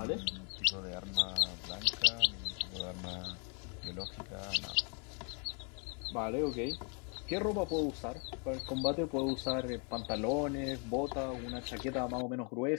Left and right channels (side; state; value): right; quieter; 37.3 dB